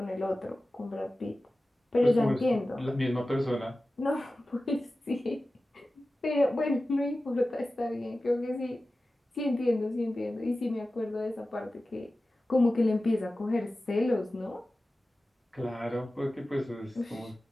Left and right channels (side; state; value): both; normal; correlation 0.95